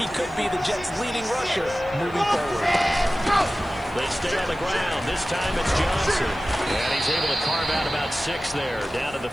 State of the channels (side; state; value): left; noise; hiss, 29 dB below the sound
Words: could be the Jets' leading rusher moving forward. They stay on the ground. This time it's Johnson. And he's able to carve out about 6 there, down to the